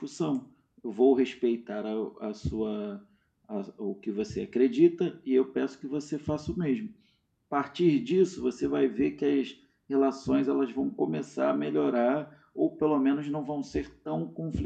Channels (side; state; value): both; identical; correlation 1.00